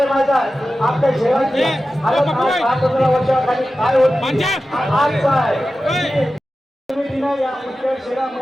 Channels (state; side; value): normal; both; correlation 0.94